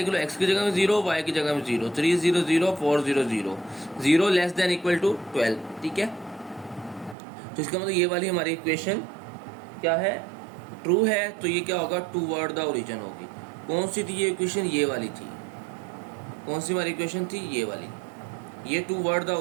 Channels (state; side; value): drops out; left; at 7.2 s